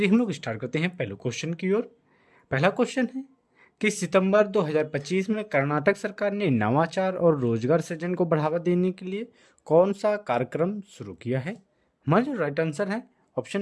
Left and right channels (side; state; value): both; identical; correlation 1.00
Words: हम लोग स्टार्ट करते हैं पहले क्वेश्चन की ओर। पहला क्वेश्चन है कि सितंबर 2025 में कर्नाटक सरकार ने नवाचार और रोजगार सृजन को बढ़ावा देने के लिए कौन सा कार्यक्रम शुरू किया है। हमारा जो राइट आंसर है